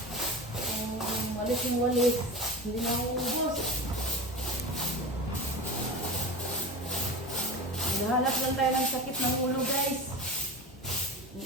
Kung walis yung walis, hindi na uubos. Nahanap lang tayo ng sakit ng ulo guys.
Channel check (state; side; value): normal; both; correlation 0.29